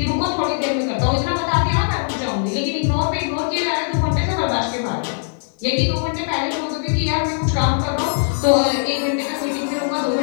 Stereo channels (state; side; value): silent; right; digital silence